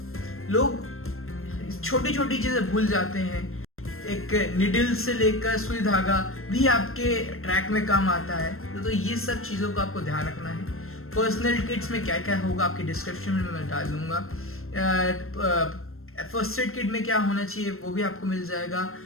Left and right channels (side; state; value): right; late; 0.62 ms